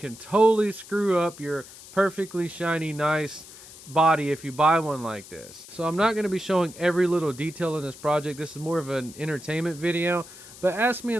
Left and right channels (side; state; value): left; noise; hiss, 18 dB below the sound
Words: totally screw up your perfectly shiny, nice body if you buy one like this. So I'm not going to be showing every little detail in this project. This is more of an entertainment video, but ask me